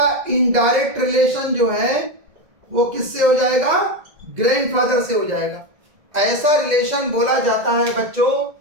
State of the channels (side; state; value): left; late; 2.0 ms